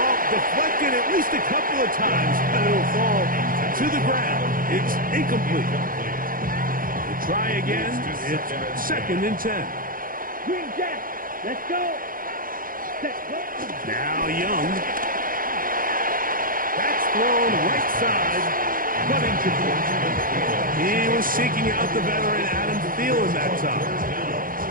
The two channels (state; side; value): late; left; 0.41 ms